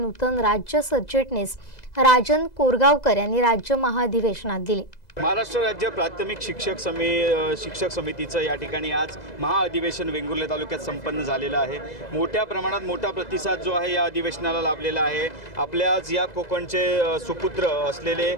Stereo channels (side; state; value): right; late; 2.0 ms